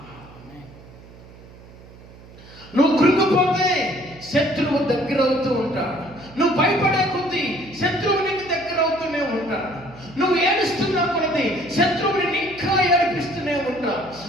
నువ్వు కృంగిపోతే శత్రువు దగ్గర అవుతూ ఉంటాడు. నువ్వు భయపడే కొద్దీ శత్రువు నీకు దగ్గర అవుతూనే ఉంటాడు. నువ్వు ఏడుస్తున్నా కొలది శత్రువుని ఇంకా ఏడిపిస్తూనే ఉంటావు.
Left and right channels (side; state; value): right; noise; hum, 20 dB below the sound